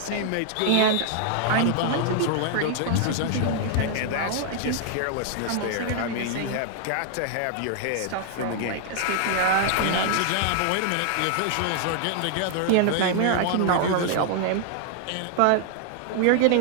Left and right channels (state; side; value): different; both; correlation 0.00